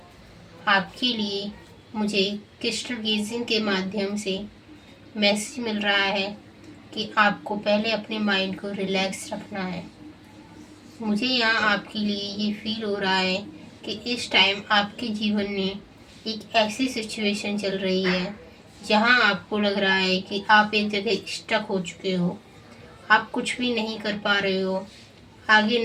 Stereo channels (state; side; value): identical; both; correlation 1.00